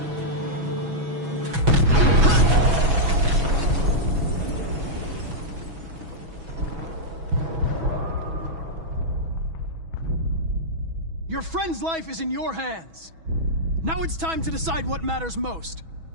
Your friend's life is in your hands. Now it's time to decide what matters most.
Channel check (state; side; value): late; left; 6.2 ms